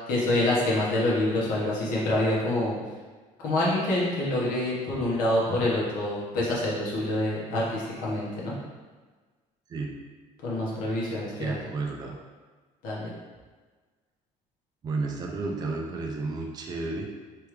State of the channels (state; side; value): normal; both; correlation 0.61